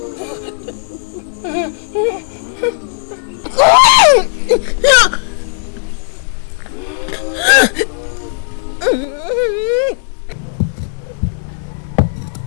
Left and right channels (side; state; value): right; silent; digital silence